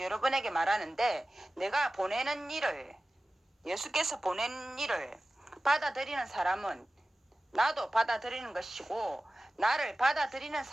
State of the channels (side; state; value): both; normal; correlation 0.96